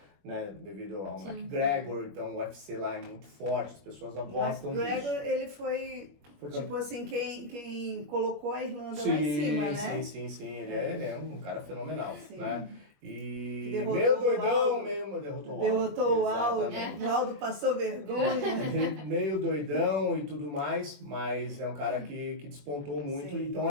né, devido ao McGregor, então o UFC lá é muito forte, as pessoas gostam disso. McGregor, ele foi tipo assim, quem colocou a Irlanda lá em cima, né? Sim, ele é um cara fenomenal, né? E derrotou meio doidão, derrotou o Aldo. O Aldo passou vergonha. Meio doidão e tudo mais, mas é um cara que despontou muito. Sim. Então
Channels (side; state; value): left; late; 21 ms